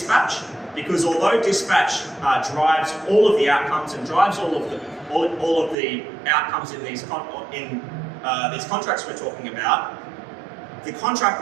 because although dispatch drives all of the outcomes and drives all of the outcomes in these contracts we're talking about, the contract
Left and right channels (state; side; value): drops out; left; at 5.8 s